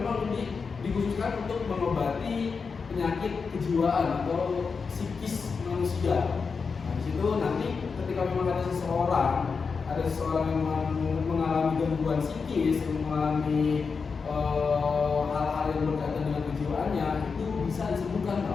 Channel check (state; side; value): quieter; right; 5.2 dB